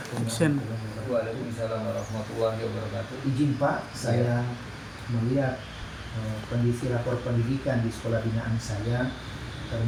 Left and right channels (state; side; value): identical; both; correlation 1.00